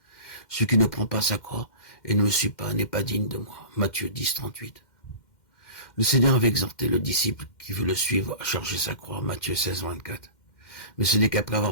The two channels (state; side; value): late; right; 2.1 ms